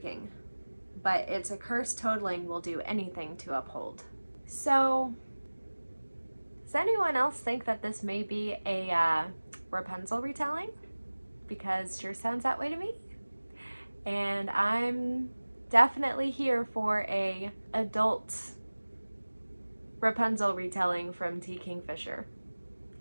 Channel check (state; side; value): inverted; both; correlation -1.00